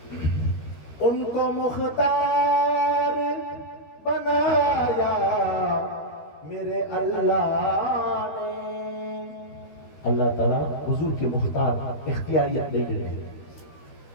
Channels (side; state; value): right; late; 13 ms